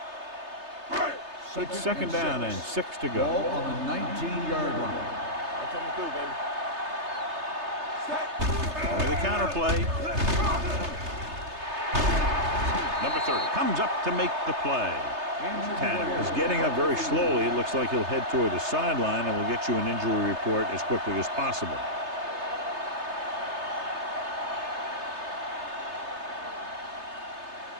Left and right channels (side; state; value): left; late; 3.3 ms